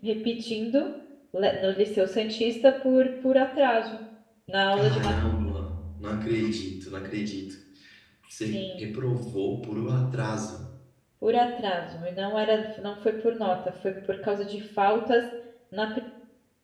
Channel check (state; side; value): identical; both; correlation 1.00